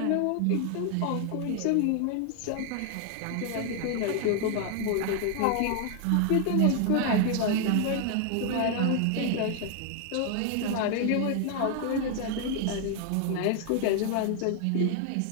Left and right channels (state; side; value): different; both; correlation 0.00